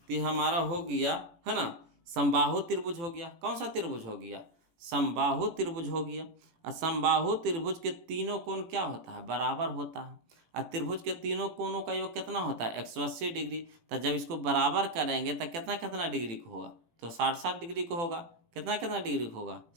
तो हमारा हो गया, है ना, समबाहु त्रिभुज हो गया। कौन सा त्रिभुज हो गया, समबाहु त्रिभुज हो गया। और समबाहु त्रिभुज के तीनों कोण क्या होता है, बराबर होता है। और त्रिभुज के तीनों कोणों का योग कितना होता है, 180 डिग्री। तो जब इसको बराबर करेंगे तो कितना कितना डिग्री को होगा, तो 60 डिग्री को होगा। कितना कितना डिग्री को होगा,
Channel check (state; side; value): late; left; 18 ms